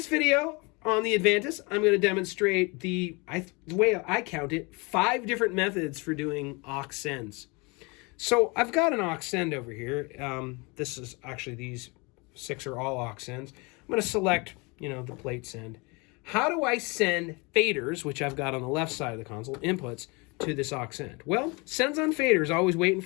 video on the Avantis, I'm going to demonstrate the way I count it, 5 different methods for doing aux sends. So I've got an aux send over here. This is actually, these 6 are all aux sends. I'm going to select, the plate send. How do I send faders, which I've got on the left side of the console, inputs, to this aux send? Well, sends on fader is always waiting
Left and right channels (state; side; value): quieter; right; 28.3 dB